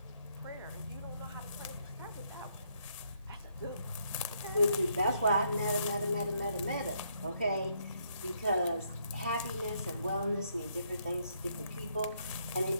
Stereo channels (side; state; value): both; inverted; correlation -0.73